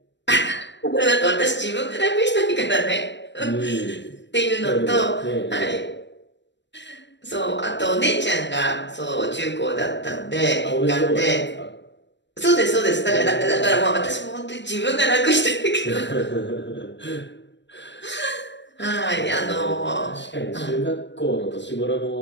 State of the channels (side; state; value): right; late; 0.52 ms